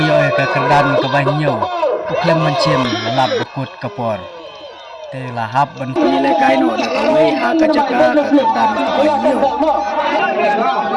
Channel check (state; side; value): identical; both; correlation 1.00